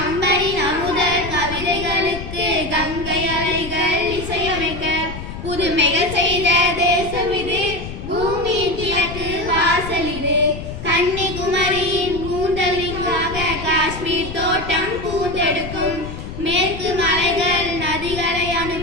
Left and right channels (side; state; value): left; noise; rumble, 9 dB below the sound